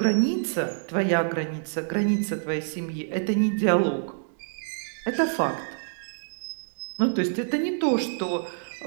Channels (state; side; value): silent; left; digital silence